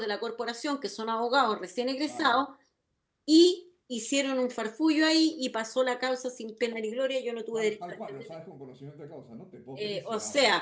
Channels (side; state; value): both; identical; correlation 1.00